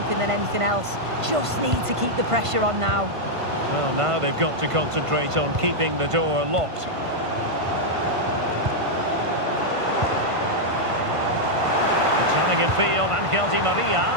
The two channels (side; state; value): left; late; 1.5 ms